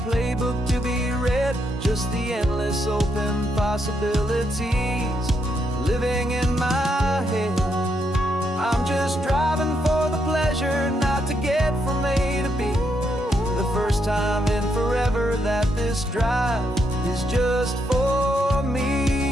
playbook to be read, just the endless open possibilities living in my head. I'm just driving for the pleasure, not to get from A to B. The first time in forever that this drive is just for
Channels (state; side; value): normal; both; correlation 0.78